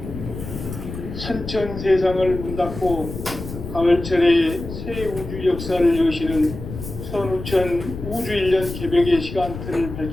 선천 세상을 문 닫고 가을철에 새 우주 역사를 여시는 선우천 우주 1년 개벽의 시간틀을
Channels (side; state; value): left; noise; rumble, 9 dB below the sound